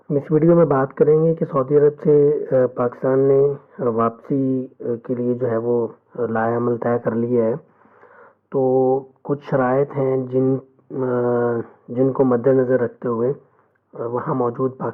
اس ویڈیو میں بات کریں گے کہ سعودی عرب سے پاکستان نے واپسی کے لیے جو ہے وہ لائحہ عمل طے کر لیا ہے، تو کچھ شرائط ہیں جن کو مد نظر رکھتے ہوئے وہاں موجود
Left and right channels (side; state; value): both; identical; correlation 1.00